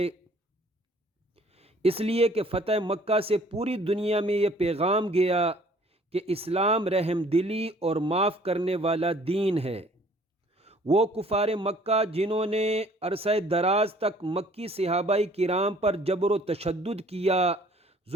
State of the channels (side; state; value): both; normal; correlation 0.56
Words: اس لیے کہ فتح مکہ سے پوری دنیا میں یہ پیغام گیا کہ اسلام رحم دلی اور معاف کرنے والا دین ہے۔ وہ کفار مکہ جنہوں نے عرصہ دراز تک مکی صحابہ کرام پر جبر و تشدد کیا،